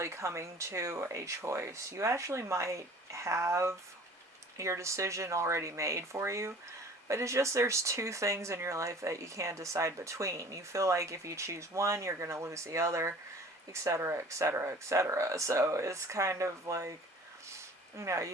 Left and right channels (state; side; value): normal; both; correlation 0.47